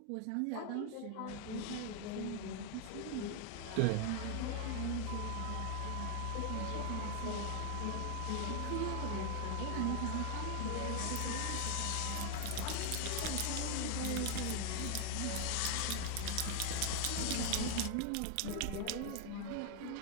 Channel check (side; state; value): both; different; correlation 0.00